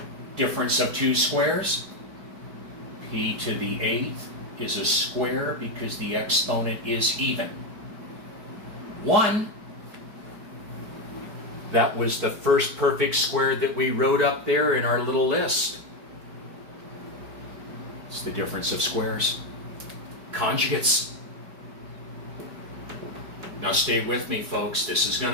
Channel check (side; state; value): left; late; 4.9 ms